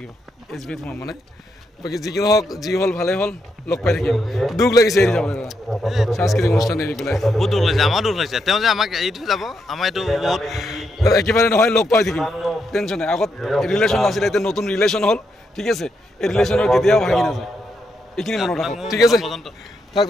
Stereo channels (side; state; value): both; normal; correlation 0.80